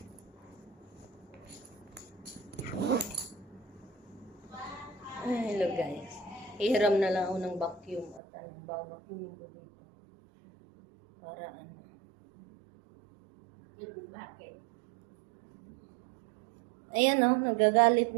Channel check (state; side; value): drops out; left; at 8.2 s